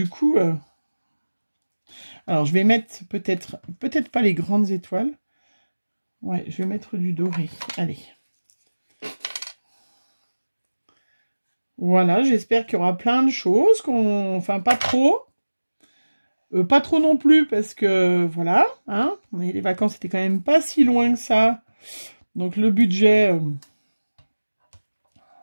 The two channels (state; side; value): inverted; both; correlation -1.00